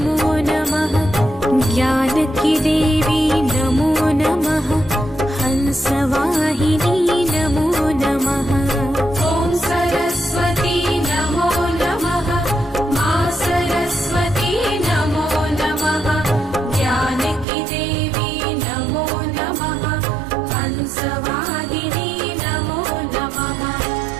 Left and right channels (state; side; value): drops out; left; at 17.4 s